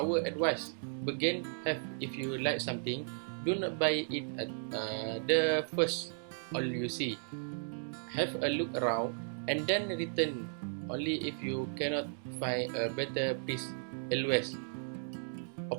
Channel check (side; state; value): left; silent; digital silence